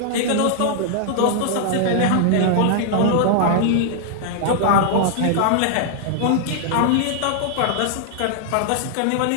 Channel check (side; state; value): both; different; correlation -0.01